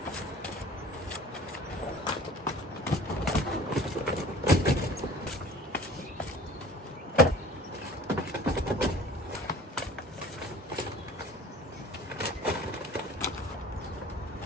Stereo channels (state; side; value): normal; both; correlation 0.46